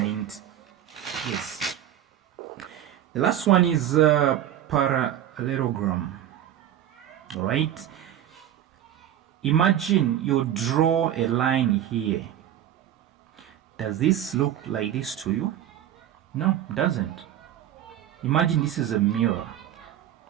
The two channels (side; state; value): left; quieter; 11.2 dB